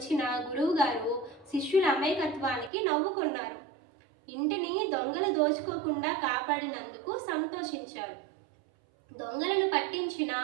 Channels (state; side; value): drops out; left; at 2.7 s